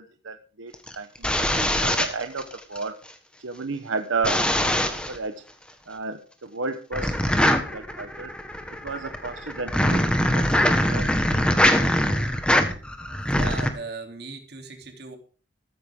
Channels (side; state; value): both; normal; correlation 0.66